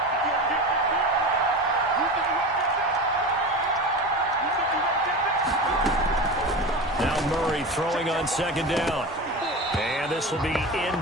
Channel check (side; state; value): both; normal; correlation 0.27